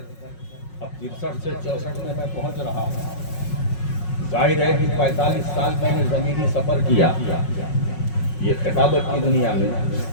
اب 63 سے 64 میں پہنچ رہا ہوں۔ ظاہر ہے کہ 45 سال میں نے زمینی سفر کیا یہ خطابت کی دنیا میں۔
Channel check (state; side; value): late; right; 5.5 ms